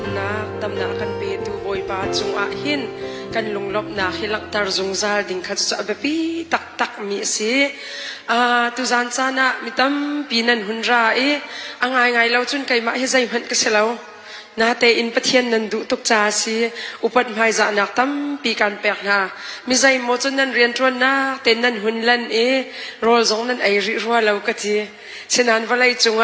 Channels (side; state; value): both; identical; correlation 1.00